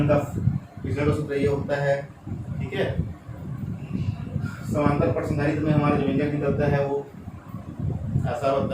का सूत्र ये होता है। ठीक है, समांतर प्रश्नधारित्र में हमारा जो व्यंजक निकलता है वो ऐसा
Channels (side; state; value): both; identical; correlation 1.00